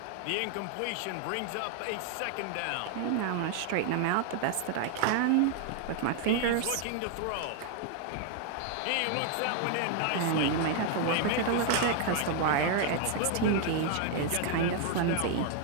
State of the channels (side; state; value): both; different; correlation 0.00